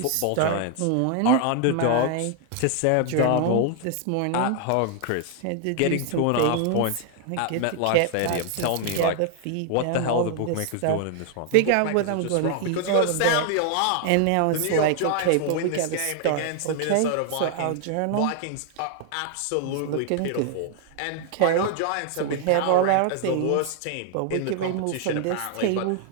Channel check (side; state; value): both; different; correlation 0.00